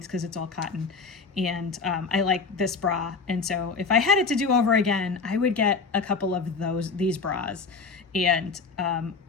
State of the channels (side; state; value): right; quieter; 4.6 dB